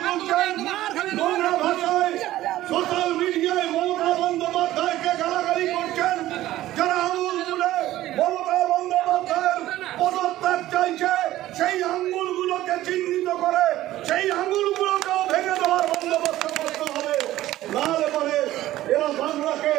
তুলছেন, নোংরা ভাষায় সোশ্যাল মিডিয়ায় মমতা বন্দ্যোপাধ্যায়কে গালাগালি করছেন, যারা আঙুল তুলে মমতা বন্দ্যোপাধ্যায়ের পদত্যাগ চাইছে, সেই আঙুলগুলোকে চিহ্নিত করে সেই আঙুলগুলোকেও ভেঙে দেওয়ার বন্দোবস্ত করতে হবে। নাহলে পরে এরা বাংলাকে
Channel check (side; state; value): left; quieter; 14.9 dB